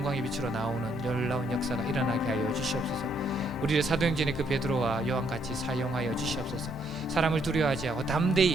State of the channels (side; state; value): both; normal; correlation 0.71